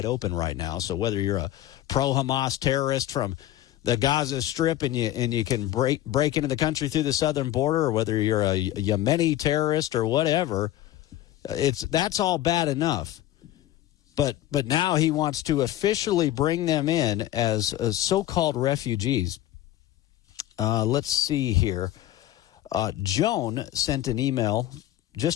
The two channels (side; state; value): right; quieter; 13.7 dB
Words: open right now. So whether you're a pro-Hamas terrorist from the Gaza Strip and you can break into the country through the southern border, or whether you're a Yemeni terrorist or whatever, that's all bad enough. But now he wants to officially bring them in as so-called refugees. Let's see here. Joan sent an email